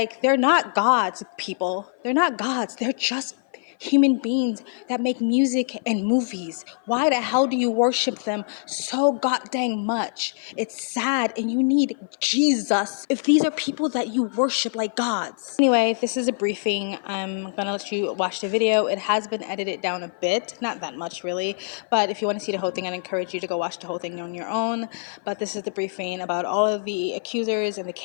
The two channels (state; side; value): silent; right; 56 dB below the other